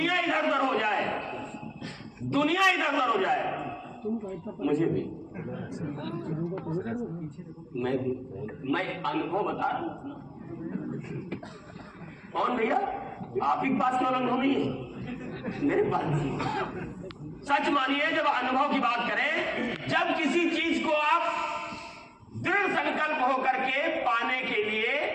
इधर उधर हो जाए, दुनिया इधर उधर हो जाए। मुझे भी, मैं अनुभव बता रहा हूं। कौन भैया? आप ही पास केवल अनुभव नहीं है, मेरे पास नहीं। सच मानिए, जब अनुभव की बात करें, जब किसी चीज को आप दृढ़ संकल्प होकर के पाने के लिए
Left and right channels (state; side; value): identical; both; correlation 1.00